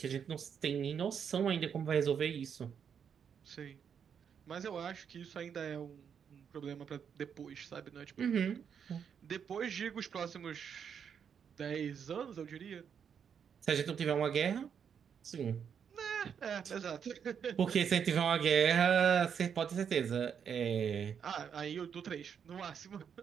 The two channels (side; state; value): left; quieter; 7.5 dB